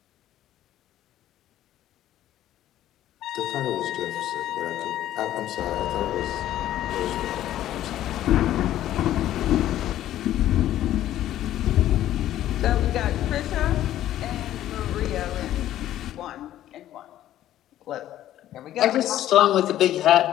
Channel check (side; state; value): right; quieter; 12.8 dB